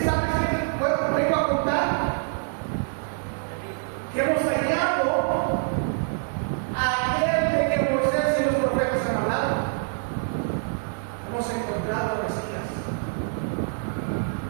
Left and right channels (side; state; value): left; silent; 60 dB below the other